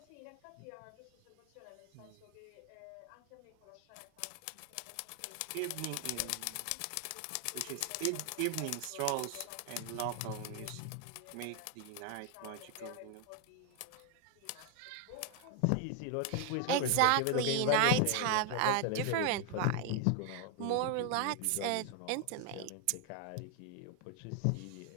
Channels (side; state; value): both; different; correlation 0.00